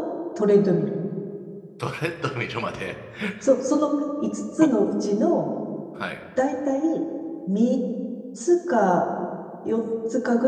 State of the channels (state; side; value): identical; both; correlation 1.00